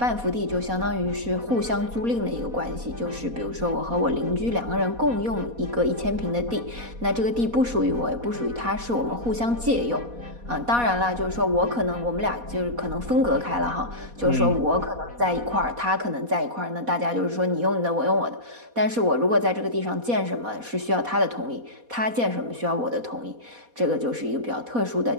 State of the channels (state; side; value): late; left; 4.2 ms